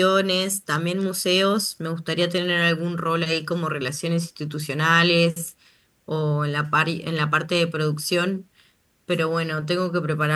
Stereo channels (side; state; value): both; identical; correlation 1.00